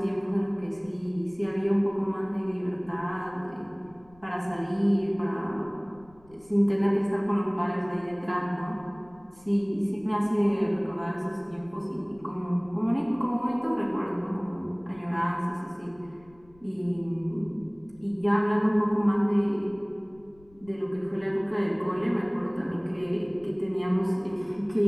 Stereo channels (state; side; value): noise; left; rumble, 27 dB below the sound